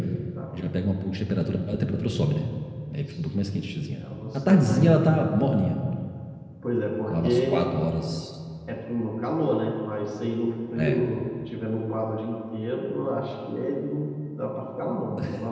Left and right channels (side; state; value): both; identical; correlation 1.00